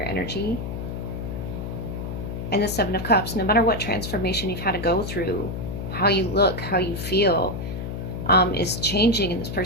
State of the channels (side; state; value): left; noise; hum, 5 dB below the sound